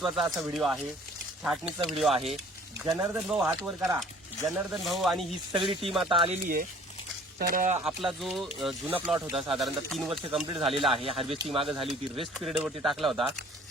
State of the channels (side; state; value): both; normal; correlation 0.53